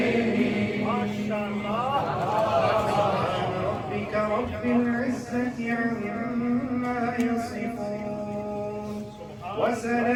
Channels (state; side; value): identical; both; correlation 1.00